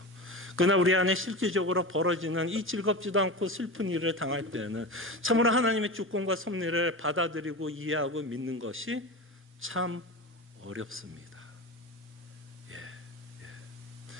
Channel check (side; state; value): both; normal; correlation 0.26